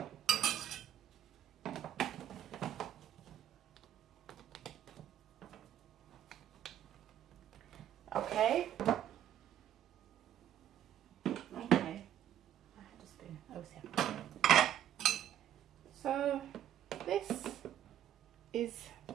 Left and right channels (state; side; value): quieter; left; 11.1 dB